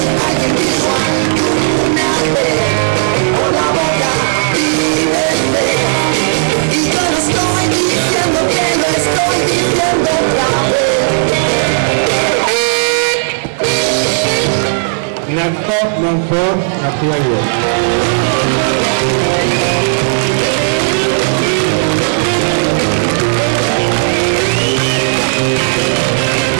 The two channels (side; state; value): left; silent; digital silence